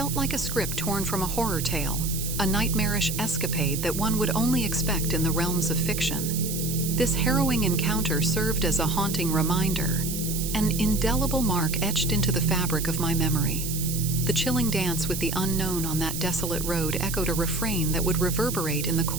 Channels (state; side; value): noise; right; hiss, 5 dB below the sound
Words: like a script torn from a horror tale, a nightmarish escapade that one would only expect in the realms of fiction. This harrowing encounter served as a haunting reminder, an indelible mark etched into the fabric of my memory. The chilling dance with the unknown on that desolate road echoed a refrain that would reverberate in the